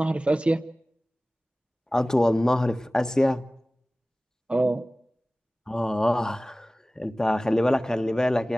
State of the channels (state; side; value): normal; both; correlation 0.98